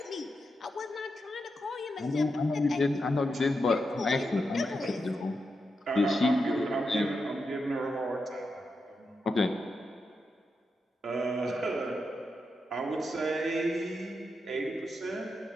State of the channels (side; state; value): both; normal; correlation 0.86